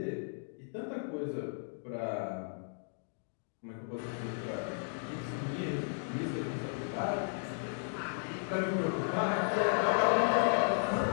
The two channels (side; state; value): right; silent; digital silence